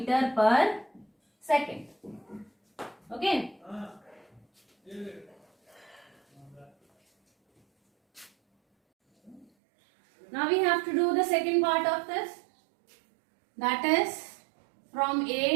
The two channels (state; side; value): drops out; left; at 9.5 s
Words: per second. Okay. Now we have to do the second part of this. That is from